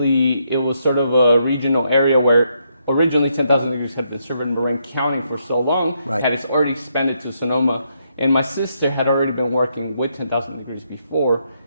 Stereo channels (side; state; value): both; inverted; correlation -0.77